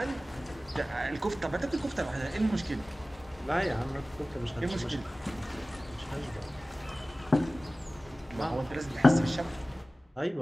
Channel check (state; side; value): normal; both; correlation 0.97